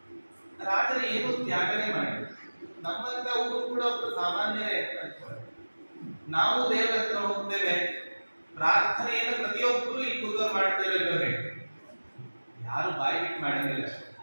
ರಾಜರು ಏನು ತ್ಯಾಗನೇ ಮಾಡಿದ್ರು. ನಮ್ಮಂತವರು ಕೂಡ ಒಬ್ಬರು ಸಾಮಾನ್ಯರೇ ಅಂತ ನಾವು ದೇವರ ಹತ್ರ ಹೋಗ್ತೇವೆ, ಪ್ರಾರ್ಥನೆಯನ್ನು ಪ್ರತಿಯೊಬ್ಬರು ಈ ಕೂದಲು ಮಾಡ್ತೇವೆ, ಯಾರು ಬಾಯಿ ಬಿಟ್ಟು ಮಾಡೋದಿಲ್ಲ.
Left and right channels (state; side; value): inverted; both; correlation -1.00